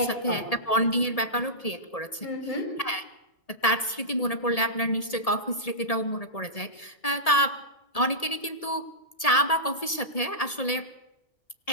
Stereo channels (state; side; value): late; right; 1.8 ms